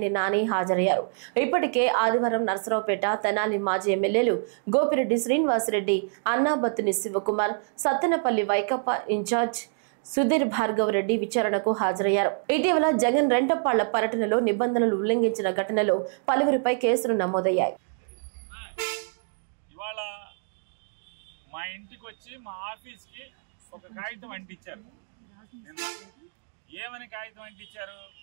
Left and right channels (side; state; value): left; silent; digital silence